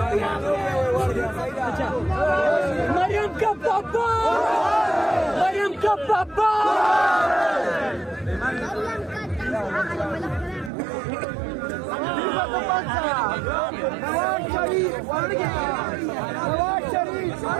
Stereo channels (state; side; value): drops out; left; at 10.7 s